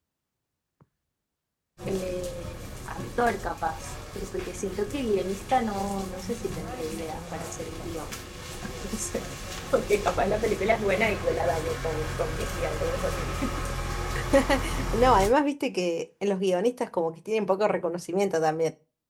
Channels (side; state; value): both; identical; correlation 1.00